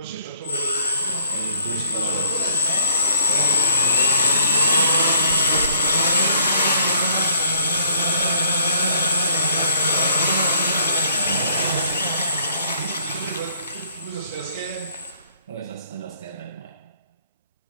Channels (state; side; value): inverted; both; correlation -0.60